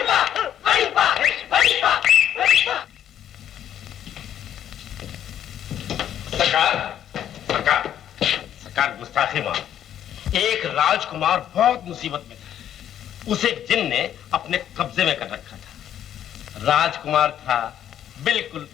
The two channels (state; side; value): quieter; right; 10.5 dB